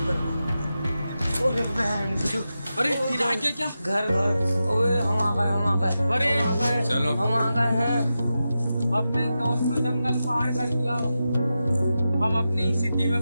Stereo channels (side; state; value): both; inverted; correlation -0.91